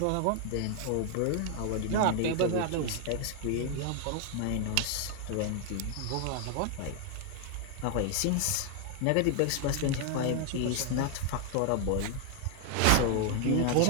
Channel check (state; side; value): different; both; correlation 0.00